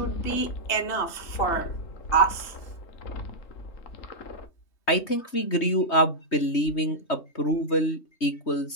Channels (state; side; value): late; right; 3.2 ms